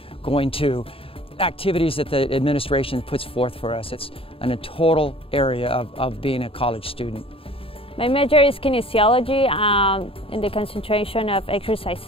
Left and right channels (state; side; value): late; right; 0.27 ms